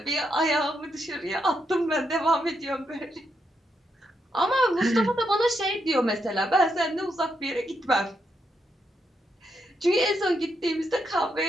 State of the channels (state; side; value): normal; both; correlation 0.81